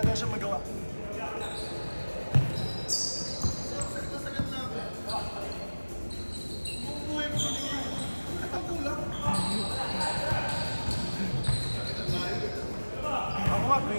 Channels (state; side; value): inverted; both; correlation -1.00